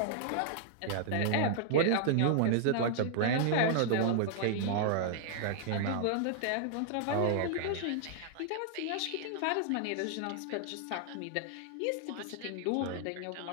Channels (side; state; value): both; different; correlation -0.01